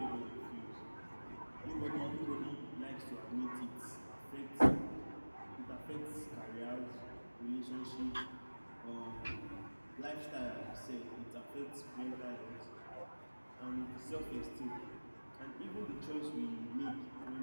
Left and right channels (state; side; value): inverted; both; correlation -1.00